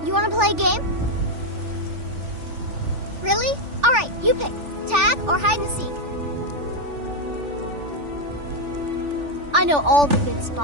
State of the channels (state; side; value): late; left; 3.4 ms